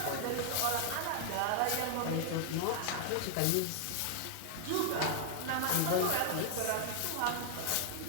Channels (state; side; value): different; both; correlation 0.00